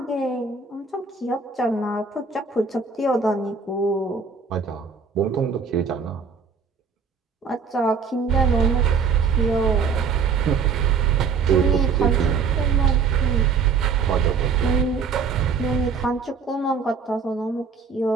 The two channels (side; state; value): left; quieter; 5.6 dB